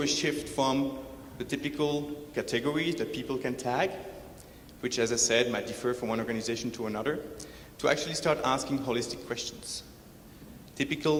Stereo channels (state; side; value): identical; both; correlation 1.00